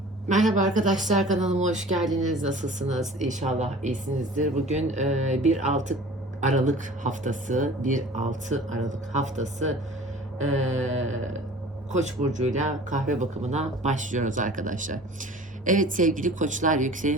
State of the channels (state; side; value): normal; both; correlation 0.44